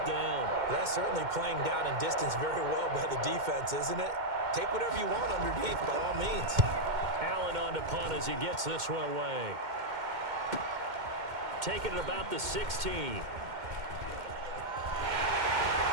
down. That's certainly playing down in distance very well by the defense, isn't it? Take whatever you want underneath, by all means. Allen on to punt as he gets this one away. Taking it about the 16. He's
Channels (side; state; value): left; late; 2.1 ms